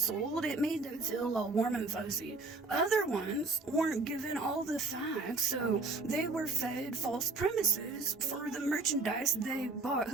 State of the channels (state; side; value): quieter; left; 3.5 dB